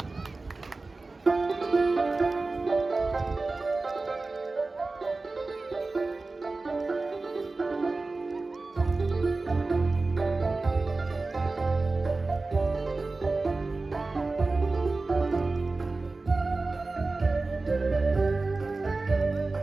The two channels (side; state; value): left; quieter; 3.5 dB